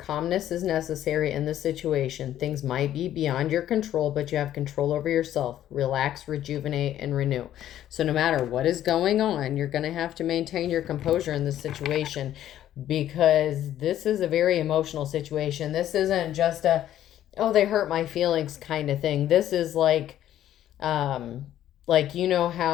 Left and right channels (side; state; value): right; quieter; 11.9 dB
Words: is necessary in this situation. Things might be beyond your control, but you have control over yourself. Relax, rejuvenate, and renew. So no matter what is going on, you're going to have to maintain your composure in this situation, because this is a very emotional situation. This isn't just a, oh, they hurt my feelings kind of thing. This is like, you know